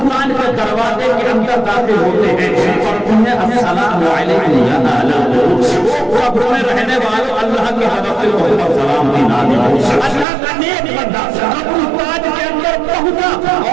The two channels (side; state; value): left; drops out; at 10.2 s